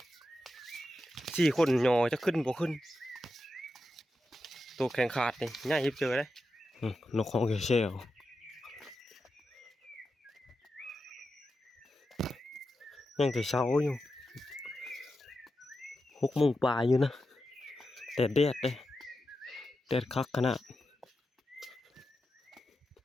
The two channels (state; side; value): normal; both; correlation 0.89